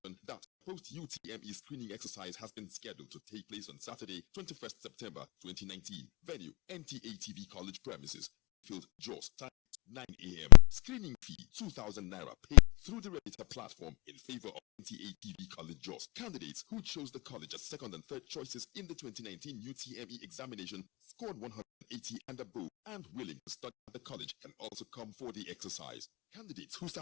that post-UTME screening exercise has been scheduled to take place on Saturday, 21st September 2019. Venue: NTA TV College premises. Field: Jos. Time: 9 a.m. Screening fee: 2,000 Naira paid through the Reddit platform in favor of NTA TV College Jos. Candidates who chose the college as second and third choices in the 2019 UTME examination, scored 180 and above, and willing to study at the college can also come for the exercise. Candidates who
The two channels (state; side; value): quieter; right; 31.5 dB